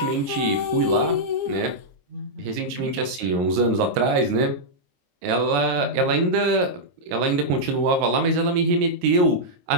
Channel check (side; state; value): left; late; 22 ms